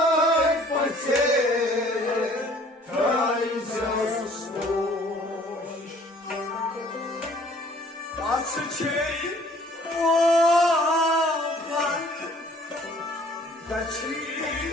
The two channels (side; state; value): both; normal; correlation 0.56